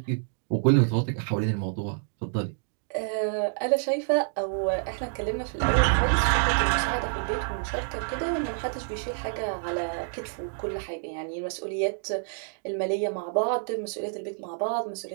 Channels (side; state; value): left; silent; digital silence